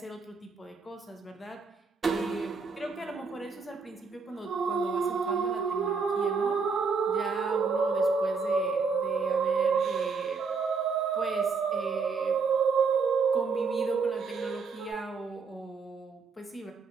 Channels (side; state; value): left; quieter; 4.9 dB